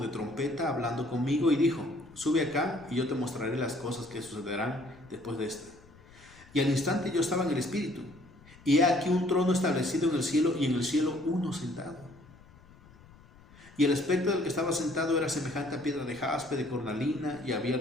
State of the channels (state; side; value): noise; left; rumble, 24 dB below the sound